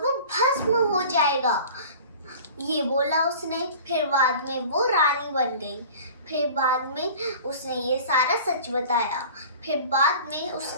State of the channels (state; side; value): inverted; both; correlation -0.41